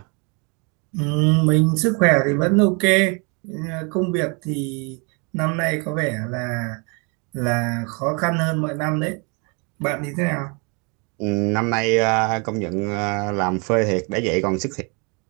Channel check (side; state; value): left; quieter; 33.0 dB